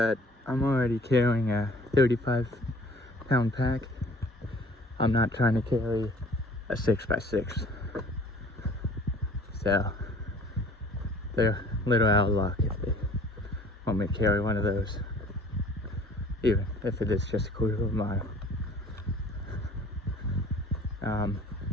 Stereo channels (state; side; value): normal; both; correlation 0.51